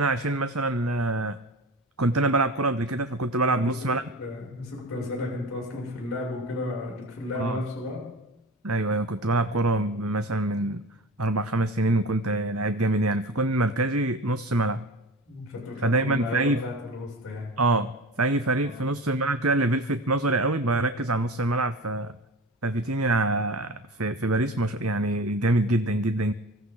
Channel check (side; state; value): both; normal; correlation 0.34